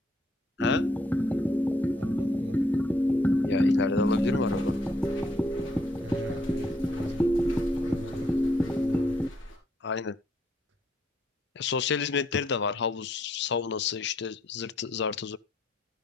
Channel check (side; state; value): both; normal; correlation 0.71